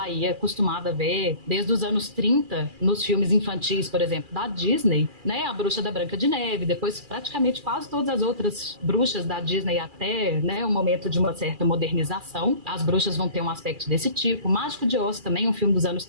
aí acostumado a ver desde os anos 30, nos filmes infantis, por exemplo, da Disney, né? A bruxa da Branca de Neve, depois praticamente quase todas as outras bruxas da Disney, até, né, o momento de uma certa modernização, as bruxas vão ter um aspecto desse tipo. Mágico de Oz também, um filme dos anos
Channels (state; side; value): late; left; 2.4 ms